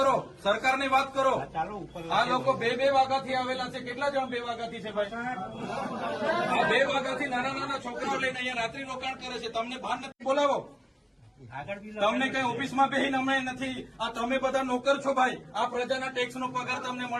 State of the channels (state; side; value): identical; both; correlation 1.00